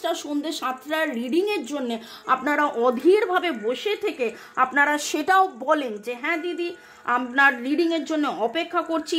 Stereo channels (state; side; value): identical; both; correlation 1.00